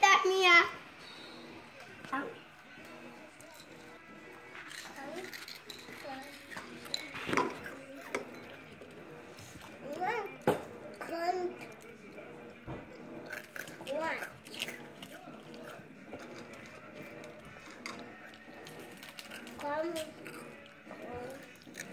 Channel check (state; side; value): identical; both; correlation 1.00